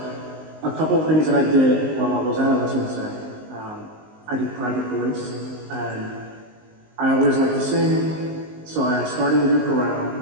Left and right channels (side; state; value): left; late; 19 ms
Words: a couple of things that I did while I was at LSMSA, I did private voice, and I always liked to sing, so I started a new